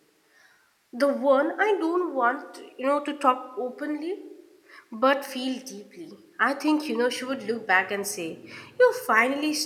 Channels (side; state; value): both; identical; correlation 1.00